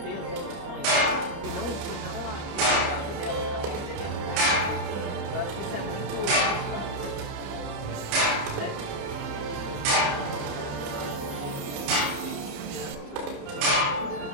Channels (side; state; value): left; late; 29 ms